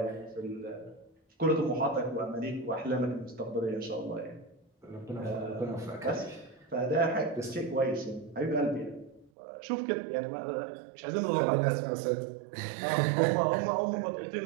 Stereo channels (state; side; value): drops out; left; at 9.3 s